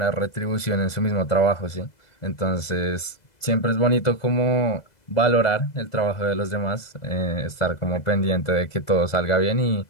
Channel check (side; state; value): right; late; 2.0 ms